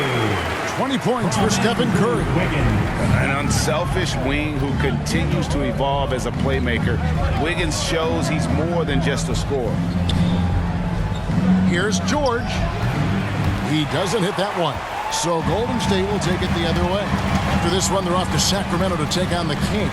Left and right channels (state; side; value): identical; both; correlation 1.00